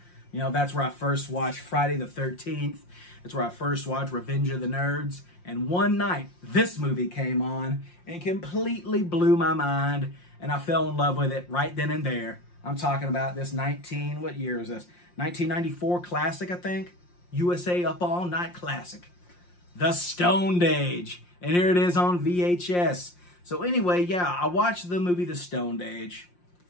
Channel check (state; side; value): late; right; 5.7 ms